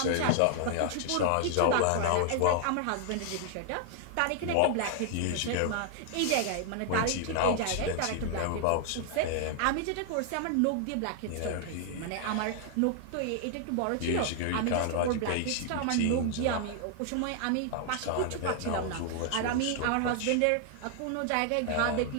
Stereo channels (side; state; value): both; different; correlation 0.00